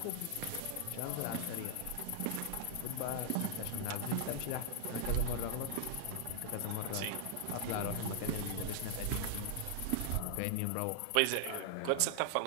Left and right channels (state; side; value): different; both; correlation 0.00